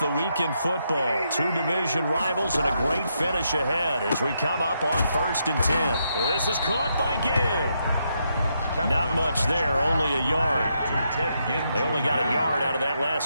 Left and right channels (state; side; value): inverted; both; correlation -0.80